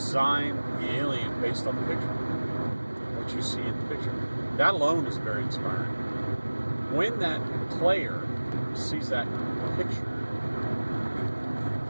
the alien based on the picture, what you see in the picture. That alone is very inspiring. When that player sees that picture,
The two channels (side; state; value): both; inverted; correlation -1.00